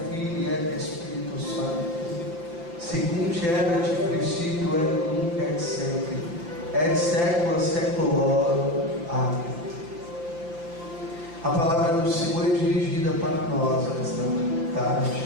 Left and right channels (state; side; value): late; left; 5.9 ms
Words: Filii et Espírito Santo, segundo erat princípio et nunc et sempre, et secula seculorum. Amém. A palavra do Senhor é dirigida para nós esta